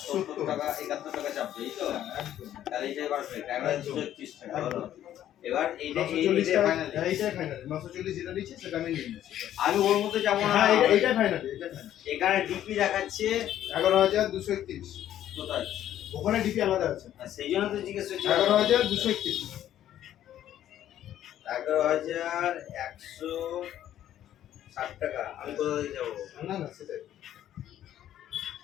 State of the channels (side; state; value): right; quieter; 11.7 dB